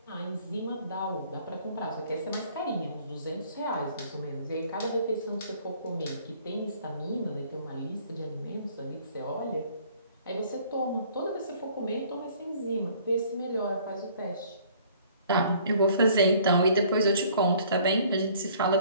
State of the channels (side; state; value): both; inverted; correlation -0.56